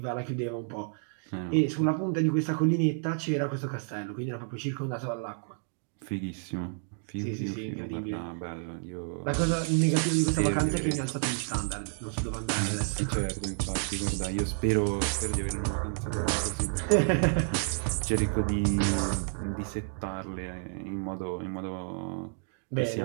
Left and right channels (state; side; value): silent; left; 58 dB below the other